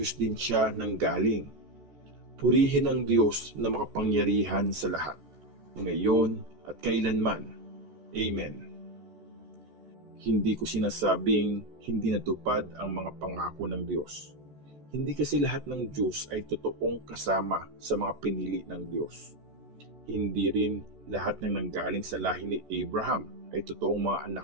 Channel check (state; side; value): late; left; 14 ms